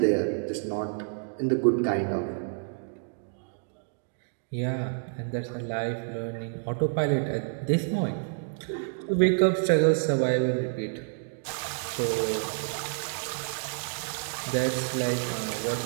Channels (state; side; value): silent; left; digital silence